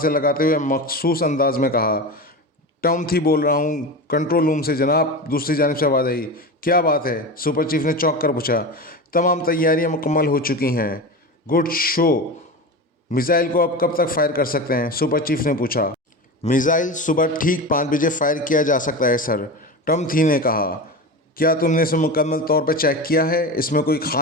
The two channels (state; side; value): normal; both; correlation 0.25